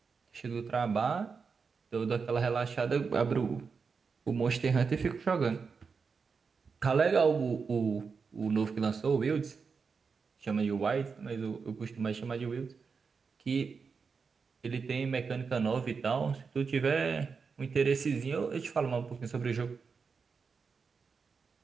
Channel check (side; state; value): left; quieter; 5.3 dB